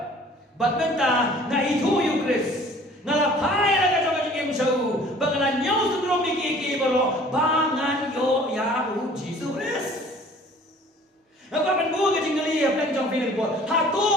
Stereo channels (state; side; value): normal; both; correlation 0.51